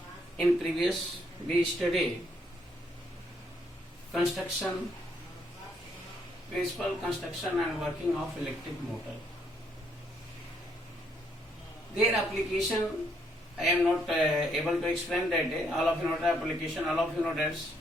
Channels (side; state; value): both; normal; correlation 0.71